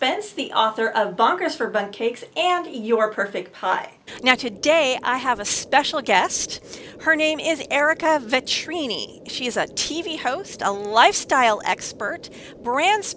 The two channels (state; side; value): identical; both; correlation 1.00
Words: the author of Bonkers for Bundt Cakes and Your Perfect Pie. Now today I have a special guest. Her name is Ereka Vetrini. She is a TV host, a lifestyle expert, brand